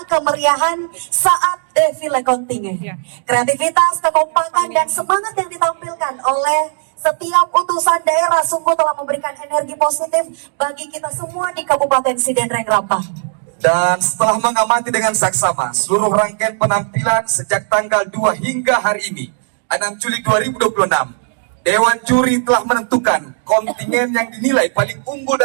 kemeriahan saat defile kontingen. Kreativitas, kekompakan, dan semangat yang ditampilkan oleh setiap utusan daerah sungguh telah memberikan energi positif bagi kita semua di Kabupaten Sidendreng Rapang. Dan setelah mengamati dengan saksama seluruh rangkaian penampilan sejak tanggal 2 hingga hari ini 6 Juli 2026, Dewan Juri telah menentukan kontingen yang dinilai paling unggul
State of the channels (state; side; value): silent; left; digital silence